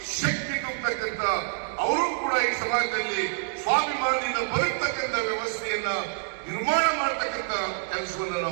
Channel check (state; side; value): silent; left; 60 dB below the other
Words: ಶಕ್ತಿ ತುಂಬತಕ್ಕಂಥ ಅವರು ಕೂಡ ಈ ಸಮಾಜದಲ್ಲಿ ಸ್ವಾಭಿಮಾನದಿಂದ ಬದುಕತಕ್ಕಂಥ ವ್ಯವಸ್ಥೆಯನ್ನ ನಿರ್ಮಾಣ ಮಾಡತಕ್ಕಂಥ ಕೆಲಸವನ್ನು